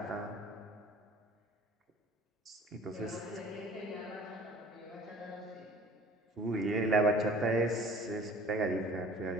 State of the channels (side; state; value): both; normal; correlation 0.48